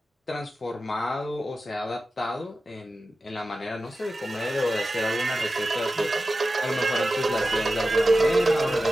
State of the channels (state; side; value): normal; both; correlation 0.93